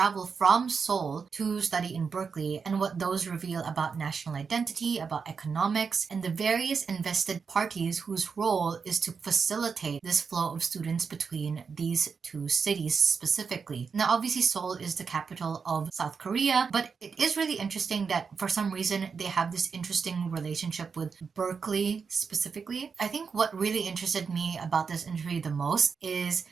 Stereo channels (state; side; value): quieter; left; 5.6 dB